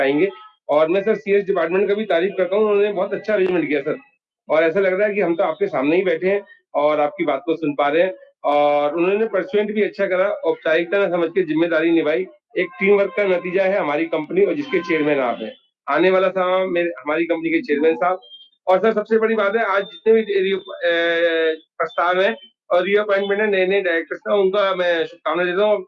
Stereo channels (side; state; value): both; identical; correlation 1.00